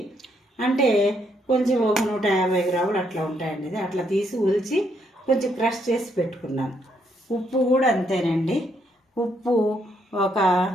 అంటే కొంచెం ఒక 150 గ్రాములు అట్లా ఉంటాయండి. ఇది అట్లా తీసి ఉల్చి కొంచెం క్రష్ చేసి పెట్టుకున్నాను. ఉప్పు కూడా అంతేనండి, ఉప్పు ఒక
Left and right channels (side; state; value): both; normal; correlation 0.74